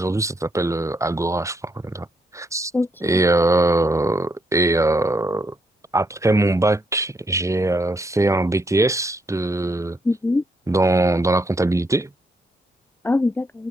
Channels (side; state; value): both; normal; correlation 0.76